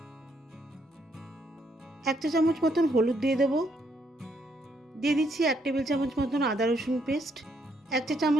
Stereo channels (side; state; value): both; normal; correlation 0.73